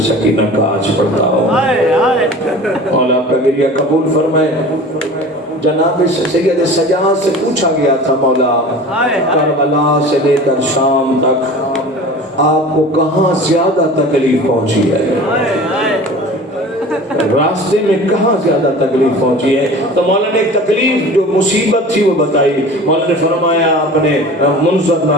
سکینہ کا آج پڑھتا ہوں۔ مولا آپ کا گریہ قبول فرمائے۔ جناب سید سجاد سے پوچھا گیا تھا مولا کربلا سے لے کر شام تک آپ کو کہاں زیادہ تکلیف پہنچی ہے، راستے میں کہاں زیادہ تکلیف پہنچی ہے؟ تو مولا نے ایک تکلیف جو مصیبت تھی وہ بتائی۔ مولا نے فرمایا، اپنے منظر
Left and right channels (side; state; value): both; normal; correlation 0.40